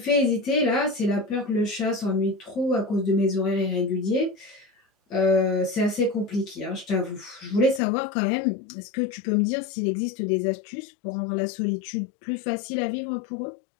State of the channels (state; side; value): drops out; right; at 7.8 s